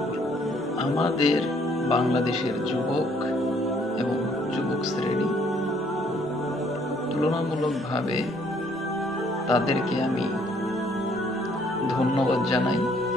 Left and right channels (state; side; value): normal; both; correlation 0.64